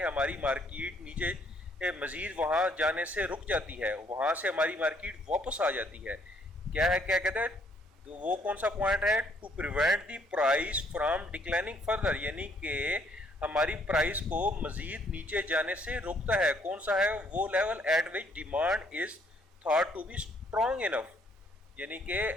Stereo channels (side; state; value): both; normal; correlation 0.66